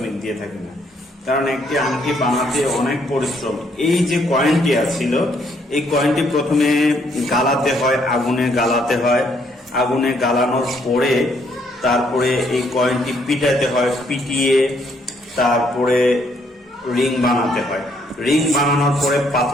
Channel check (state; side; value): normal; both; correlation 0.69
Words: দিয়ে থাকি না। কারণ একটি আংটি বানাতে অনেক পরিশ্রম। এই যে কয়েনটি ছিল, এই কয়েনটি প্রথমে গালাতে হয়, আগুনে গালাতে হয়। আগুনে গালানোর পরে তারপরে এই কয়েনটি পিটাতে হয়, পিটিয়ে তারপরে রিং বানাতে হয়। রিং বানানোর পরে